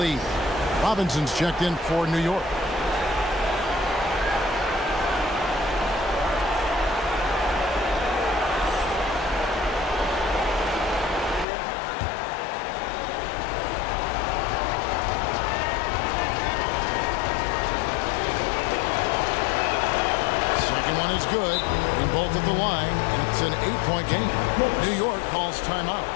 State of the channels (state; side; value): drops out; right; at 11.5 s